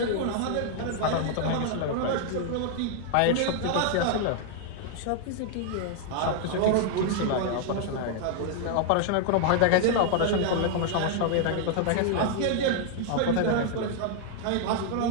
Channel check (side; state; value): both; different; correlation 0.00